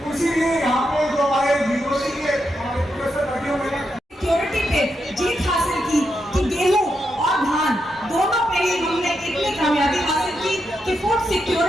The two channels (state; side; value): normal; both; correlation 0.84